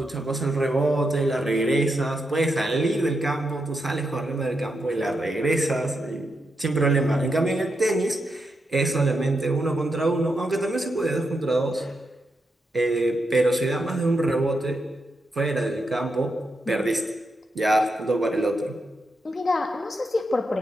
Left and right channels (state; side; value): normal; both; correlation 0.84